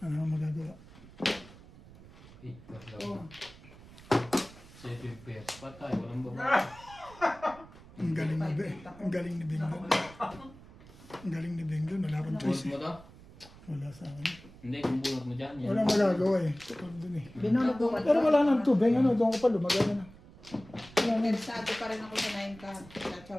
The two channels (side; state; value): right; noise; rumble, 20 dB below the sound